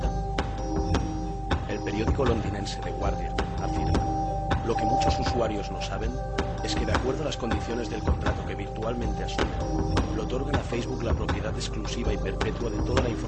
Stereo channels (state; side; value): identical; both; correlation 1.00